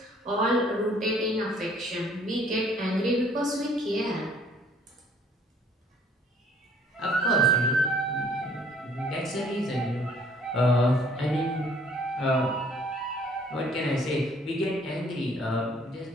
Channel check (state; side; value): normal; both; correlation 0.59